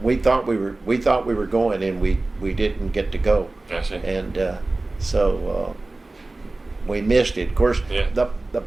we thought we were going, and we didn't get to go. I see. And so we missed it. Of course, Yeah. the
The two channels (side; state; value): left; quieter; 3.1 dB